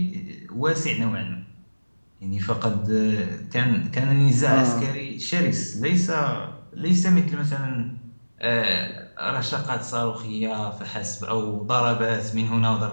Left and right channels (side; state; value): both; inverted; correlation -1.00